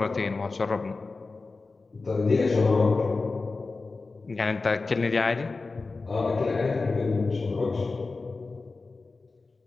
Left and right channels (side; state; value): right; quieter; 3.8 dB